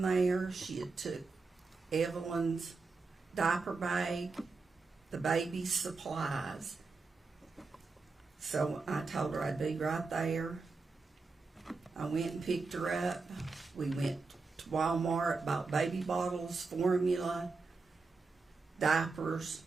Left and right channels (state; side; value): quieter; left; 4.1 dB